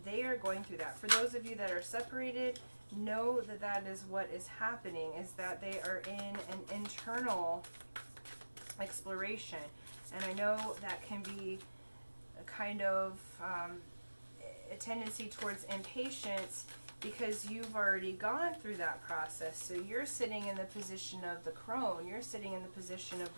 they are going through that. For those of you that are separated, know that that is what is happening, is that they are in an internal exploration. And I know that can be a kind of a tendency towards impatience, because you've already gone through that process. So you're sitting in the position of the crone. You're sitting in the position of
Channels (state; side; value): inverted; both; correlation -1.00